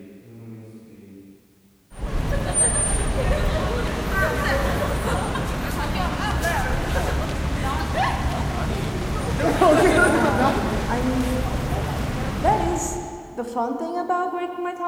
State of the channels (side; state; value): both; identical; correlation 1.00